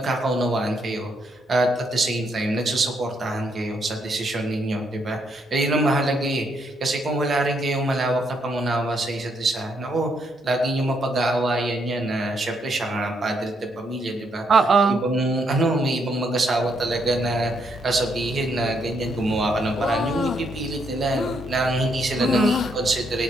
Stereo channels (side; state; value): both; normal; correlation 0.75